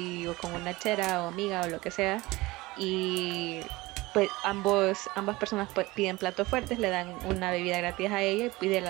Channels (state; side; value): quieter; left; 20.7 dB